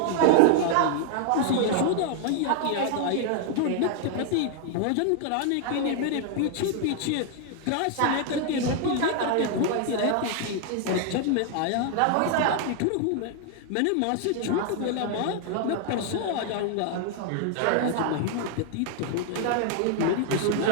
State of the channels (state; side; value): different; both; correlation 0.00